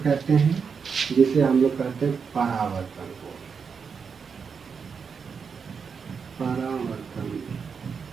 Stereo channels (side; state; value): left; quieter; 6.0 dB